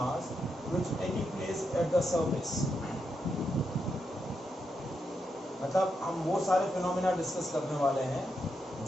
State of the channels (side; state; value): both; normal; correlation 0.83